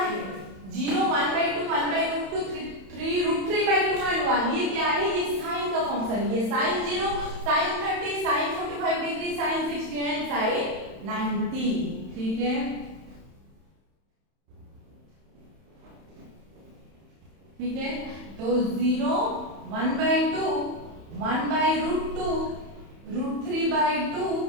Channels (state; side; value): late; left; 31 ms